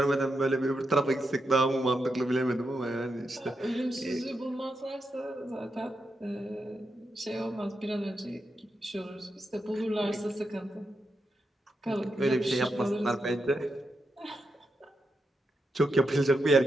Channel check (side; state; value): both; normal; correlation 0.85